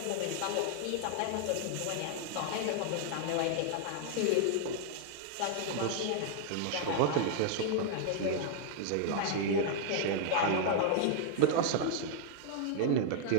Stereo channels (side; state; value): both; different; correlation -0.01